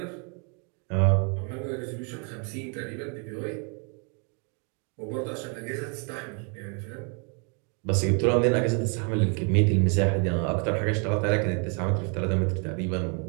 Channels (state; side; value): quieter; left; 37.3 dB